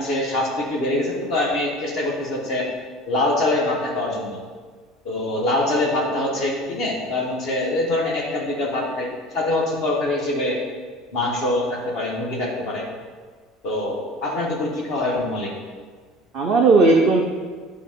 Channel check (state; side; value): normal; both; correlation 0.40